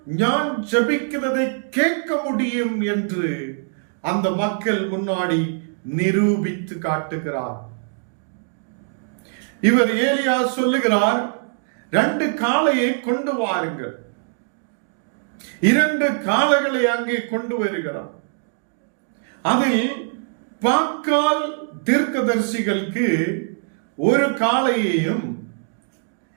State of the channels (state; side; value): silent; left; digital silence